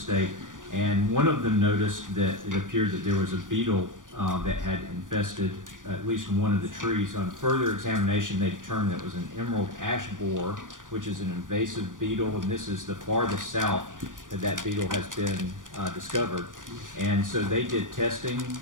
and one of them noticed that it appeared that there was a beetle that had infested at least one of the trees. On further examination, they determined that it was an emerald ash borer, which is an invasive beetle, and this is the farthest south that beetle has been discovered. And so they did testing,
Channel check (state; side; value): late; left; 0.88 ms